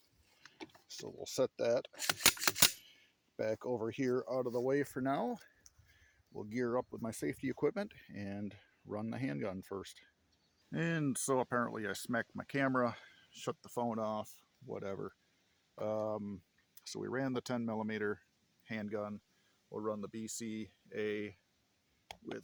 so we'll set that back over here out of the way for now. We'll gear up with my safety equipment and run the handgun first. And so apparently I smacked my camera, shut the phone off, whatever. So we ran the 10 millimeter handgun. We'll run the BCA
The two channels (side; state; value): both; identical; correlation 1.00